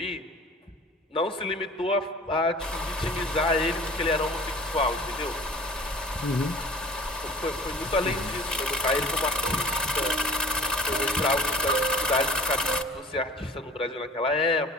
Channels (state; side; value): normal; both; correlation 0.44